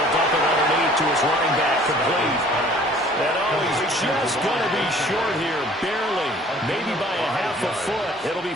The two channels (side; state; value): both; normal; correlation 0.53